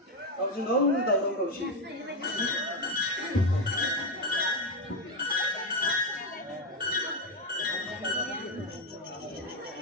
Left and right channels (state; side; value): normal; both; correlation 0.08